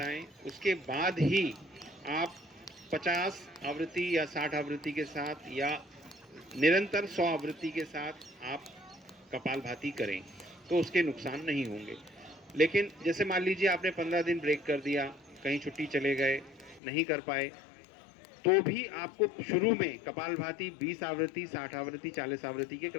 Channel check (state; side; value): drops out; right; at 16.8 s